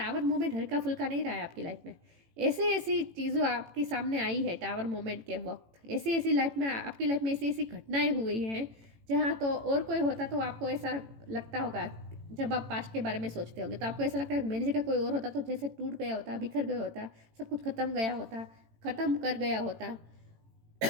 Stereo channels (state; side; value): late; left; 18 ms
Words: मोमेंट हल्का फुल्का नहीं रहा है आपकी लाइफ में, ऐसी ऐसी चीज़ों आपके सामने आई है टावर मोमेंट के वक्त, ऐसी ऐसी लाइफ में आपकी लाइफ में ऐसी ऐसी घटनाएं हुई हैं जहाँ तो और कोई होता तो आपको ऐसा लगता होगा, जब आप पास्ट के बारे में सोचते होंगे तो आपको ऐसा लगता है मेरी जगह कोई और होता तो जैसे टूट गया होता, बिखर गया होता, सब कुछ खत्म गया होता, ख़त्म कर गया होता।